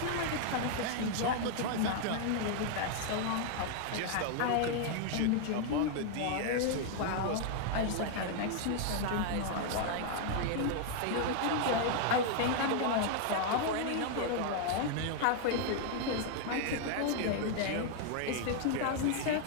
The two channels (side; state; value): both; different; correlation 0.00